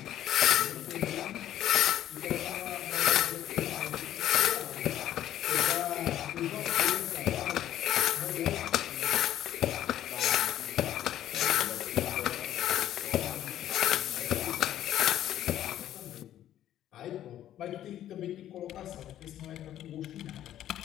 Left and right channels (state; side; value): quieter; right; 12.0 dB